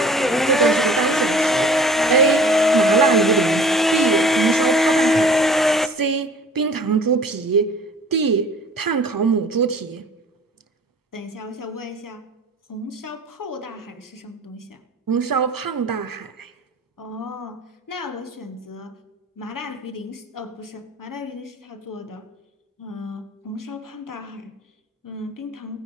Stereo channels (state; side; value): normal; both; correlation 0.49